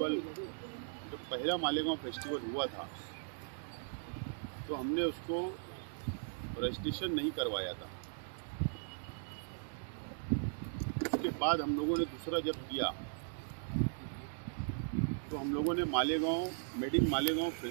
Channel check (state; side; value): silent; left; digital silence